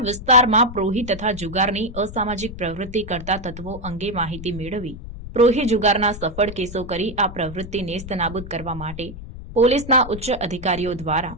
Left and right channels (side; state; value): left; noise; rumble, 12 dB below the sound